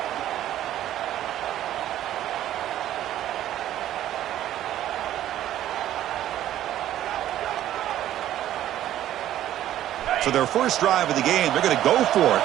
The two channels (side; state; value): left; quieter; 12.5 dB